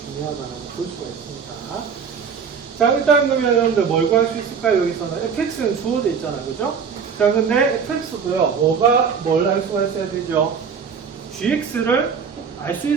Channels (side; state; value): left; quieter; 6.4 dB